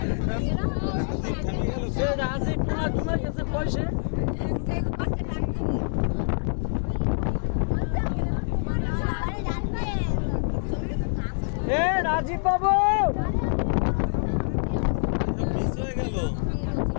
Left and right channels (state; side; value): silent; right; digital silence